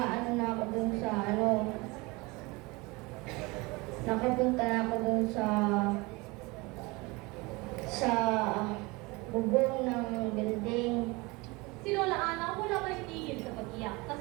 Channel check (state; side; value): quieter; left; 24.7 dB